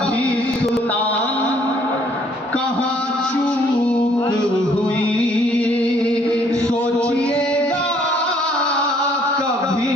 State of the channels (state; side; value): normal; both; correlation 0.63